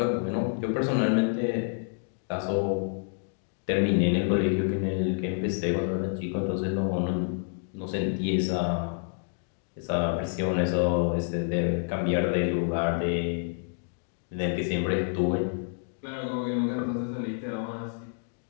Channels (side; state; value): right; silent; digital silence